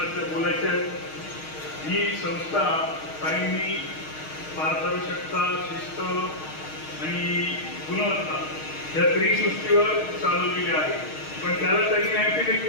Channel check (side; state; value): right; late; 6.4 ms